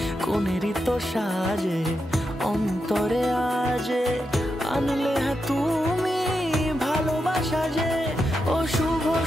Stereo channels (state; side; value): normal; both; correlation 0.86